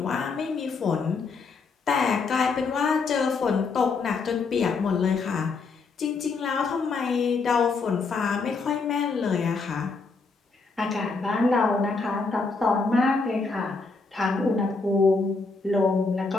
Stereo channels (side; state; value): right; quieter; 4.3 dB